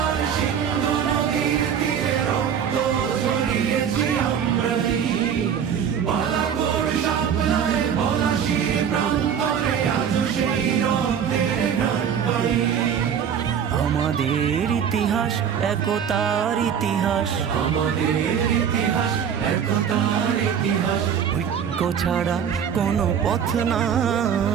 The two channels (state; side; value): quieter; left; 8.1 dB